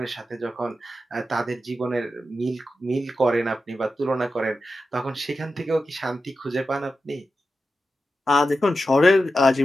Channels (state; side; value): normal; both; correlation 0.91